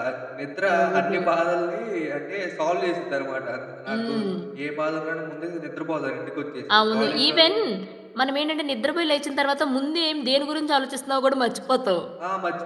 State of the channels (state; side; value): identical; both; correlation 1.00